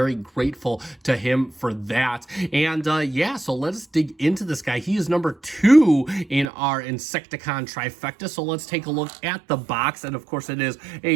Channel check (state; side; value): drops out; left; at 6.5 s